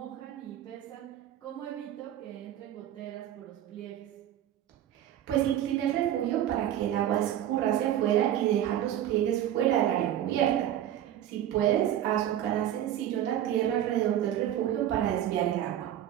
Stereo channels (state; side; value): quieter; left; 11.6 dB